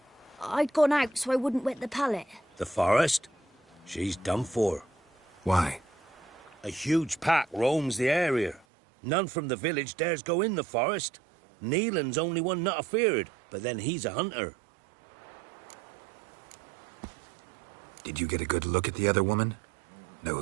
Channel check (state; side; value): drops out; left; at 8.7 s